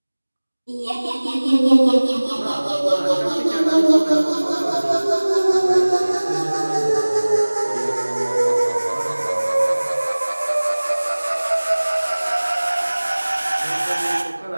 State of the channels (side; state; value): both; inverted; correlation -1.00